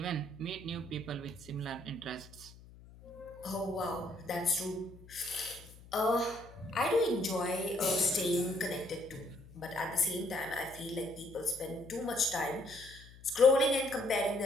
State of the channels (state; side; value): noise; left; hum, 20 dB below the sound